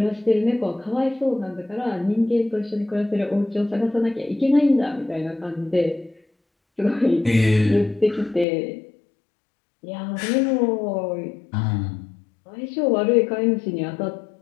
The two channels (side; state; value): right; drops out; at 8.5 s